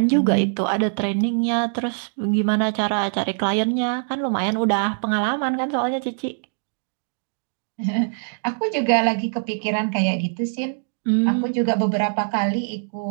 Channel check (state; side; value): silent; left; digital silence